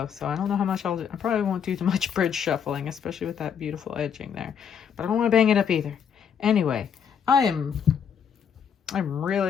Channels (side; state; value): right; quieter; 7.6 dB